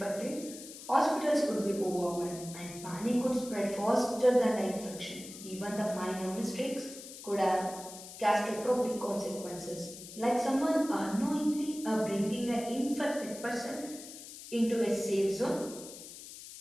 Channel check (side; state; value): left; noise; hiss, 14 dB below the sound